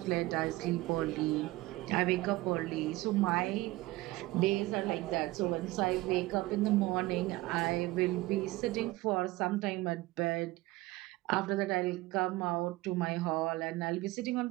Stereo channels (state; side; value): quieter; left; 19.2 dB